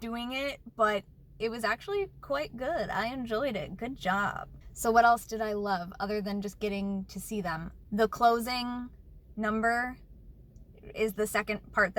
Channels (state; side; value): identical; both; correlation 1.00